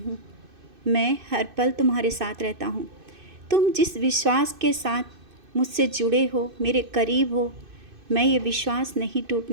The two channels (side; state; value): left; late; 2.6 ms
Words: हूँ। मैं हर पल तुम्हारे साथ रहता हूँ। तुम जिस विश्वास के साथ मुझसे जुड़े हो, मेरे करीब हो, मैं ये विश्वास नहीं